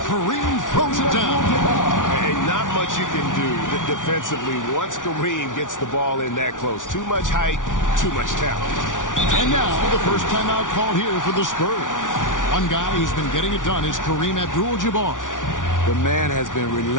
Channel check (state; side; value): late; right; 0.88 ms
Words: Kareem throws it down. And not much you can do defensively once Kareem gets the ball in that close. Too much height, too much talent. And now the first timeout called here for the Spurs. One guy who's been getting it done is Kareem Abdul-Jabbar. The man has been